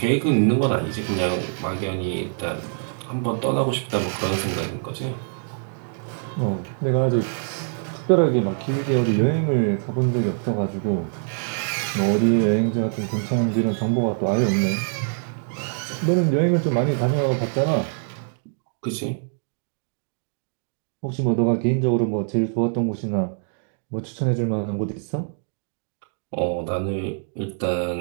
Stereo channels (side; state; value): left; silent; digital silence